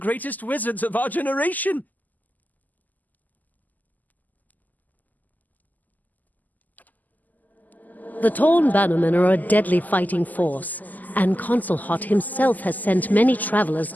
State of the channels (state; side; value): late; right; 0.082 ms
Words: wizards of our generation! The Torn Bannermen are a deadly fighting force, and Consul Hot himself has sent many travelers